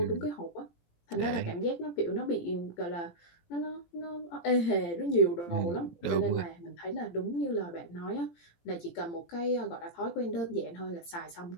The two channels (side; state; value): right; late; 17 ms